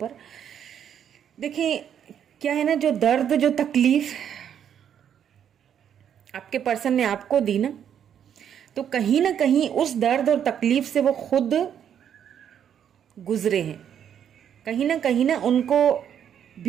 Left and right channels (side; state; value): left; quieter; 9.0 dB